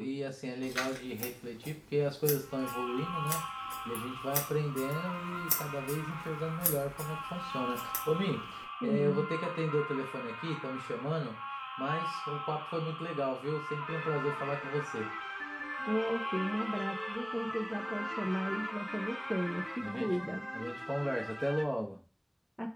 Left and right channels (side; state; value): both; identical; correlation 1.00